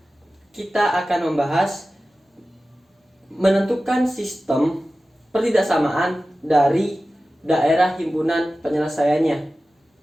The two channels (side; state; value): both; normal; correlation 0.95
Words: kita akan membahas menentukan sistem pertidaksamaan dari daerah himpunan penyelesaiannya.